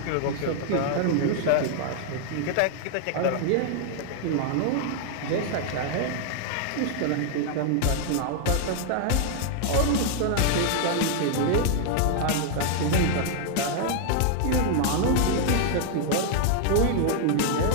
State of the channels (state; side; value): different; both; correlation 0.00